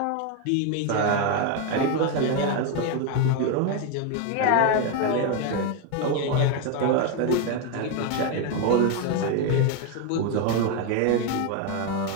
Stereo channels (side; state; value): both; different; correlation 0.02